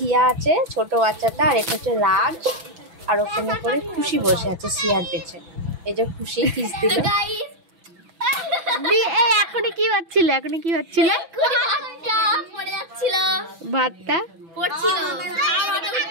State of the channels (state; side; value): late; left; 6.0 ms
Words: আছে ছোট বাচ্চাটা, আর এটা হচ্ছে রাজ, আর ওখানে করে খুশি বসে আছে সিয়ার পেছে। এই যে খুশি কিস দিল। এখনই কি হচ্ছিল? ভাতটা পড়ছিল।